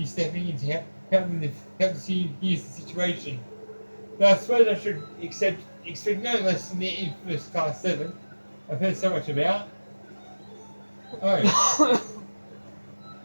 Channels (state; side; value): inverted; both; correlation -1.00